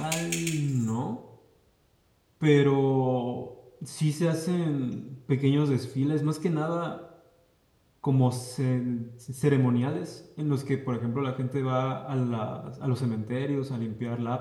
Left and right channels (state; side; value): identical; both; correlation 1.00